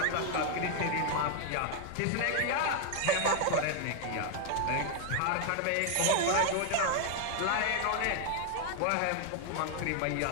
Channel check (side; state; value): both; different; correlation 0.00